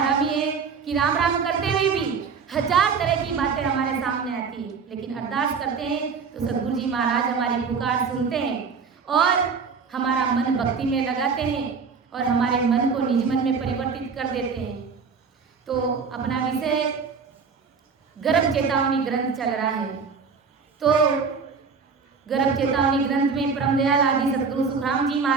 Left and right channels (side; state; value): left; quieter; 5.5 dB